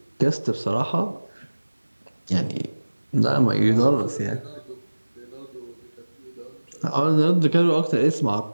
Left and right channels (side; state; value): both; inverted; correlation -1.00